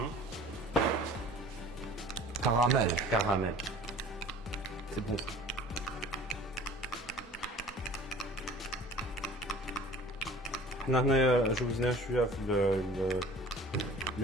Caramel. Caramel. C'est bon. هنا جوزنا شويه في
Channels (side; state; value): both; normal; correlation 0.45